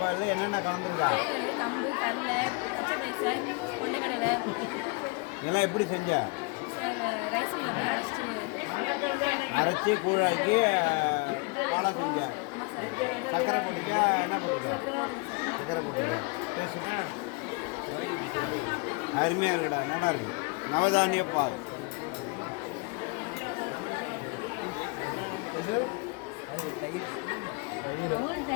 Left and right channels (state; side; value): quieter; right; 29.2 dB